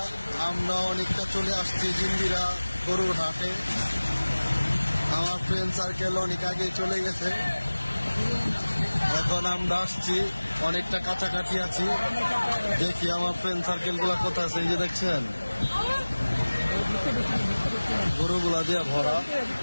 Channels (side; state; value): both; inverted; correlation -1.00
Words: আমরা অনেকটা চলে আসছি জিঞ্জিরা গরুর হাটে। আমার ফ্রেন্ড সার্কেল অনেক আগে চলে গেছে, এখন আমরা আসছি, অনেকটা কাছাকাছি আছি। দেখি আমার ফ্রেন্ড সার্কেল গুলা কোথায় আছে। এই যে দেখছেন গরুগুলা দিয়ে ভরা।